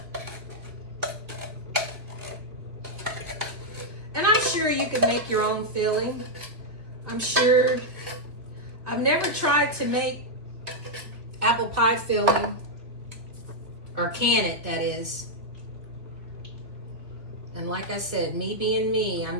And I'm sure you could make your own filling. I'm sure. I've never tried to make apple pie filling, or can it, that is. And like I said, me being me,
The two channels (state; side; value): late; left; 2.8 ms